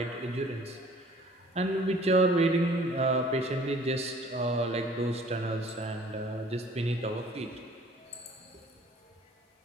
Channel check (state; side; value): normal; both; correlation 0.53